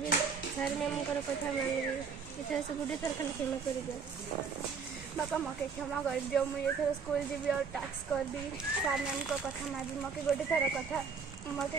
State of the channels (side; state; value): left; quieter; 5.7 dB